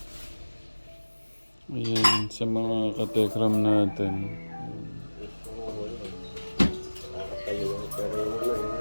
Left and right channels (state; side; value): inverted; both; correlation -1.00